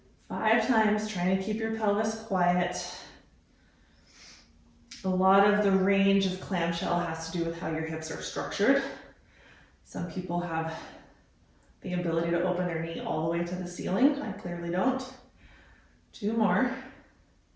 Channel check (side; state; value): both; identical; correlation 1.00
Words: 5 times, trying to keep your pelvis quiet. A lot of the range of clamshell has to do with how your hips are structured. Some people have the ability to open their knee all the way to the ceiling. I clearly don't. 2 more.